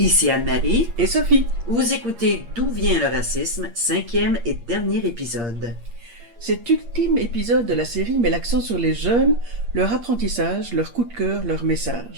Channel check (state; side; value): late; left; 8.6 ms